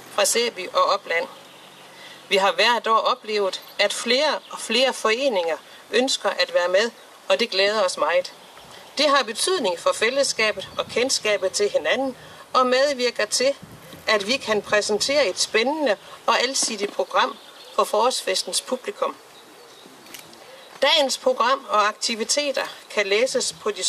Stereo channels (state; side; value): identical; both; correlation 1.00